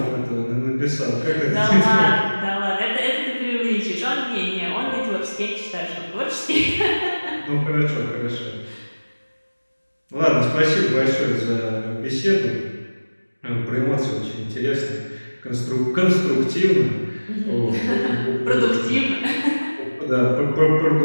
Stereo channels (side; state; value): both; inverted; correlation -1.00